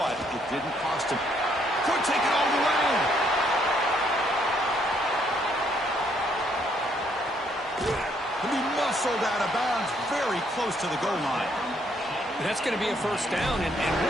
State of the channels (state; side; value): normal; both; correlation 0.70